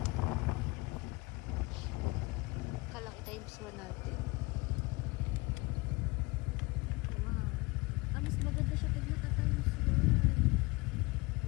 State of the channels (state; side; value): quieter; right; 24.1 dB